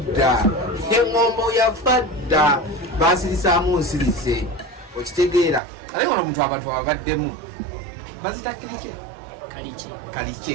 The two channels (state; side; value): drops out; left; at 5.6 s